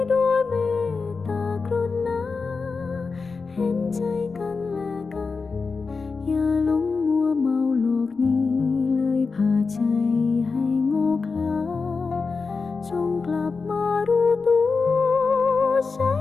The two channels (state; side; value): quieter; right; 4.6 dB